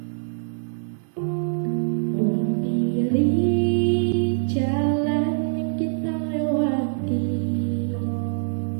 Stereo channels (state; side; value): silent; left; digital silence